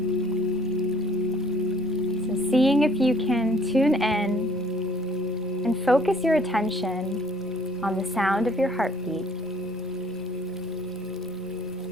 Seeing if you can tune in and focus your attention on the sound of your heartbeat.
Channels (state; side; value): normal; both; correlation 0.58